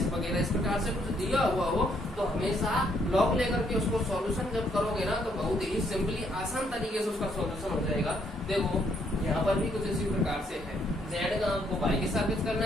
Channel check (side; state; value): both; normal; correlation 0.71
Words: वगैरह इस प्रकार से कुछ दिया हुआ हो तो हमेशा लॉग लेकर के उसको सॉल्यूशन जब करोगे ना तो बहुत ही सिंपली आसान तरीके से उसका सॉल्यूशन हो जाएगा। देखो यहाँ पर भी कुछ इसी प्रकार से है। जेड का आपको वाई के सापेक्ष करना